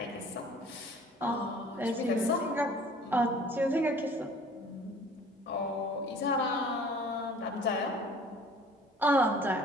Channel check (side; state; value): both; normal; correlation 0.50